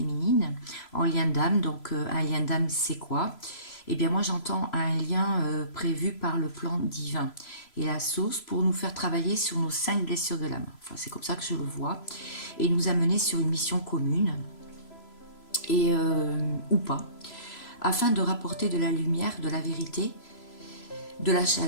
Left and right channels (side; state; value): right; late; 3.0 ms